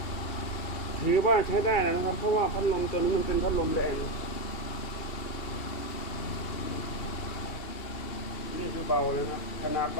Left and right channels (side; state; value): right; late; 2.7 ms